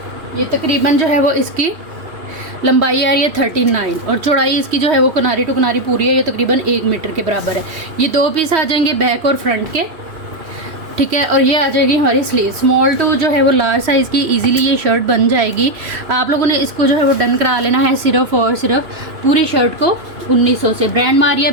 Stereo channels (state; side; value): late; left; 3.1 ms